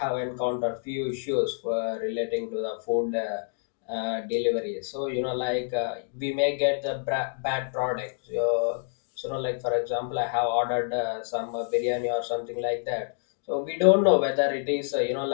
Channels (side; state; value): right; silent; digital silence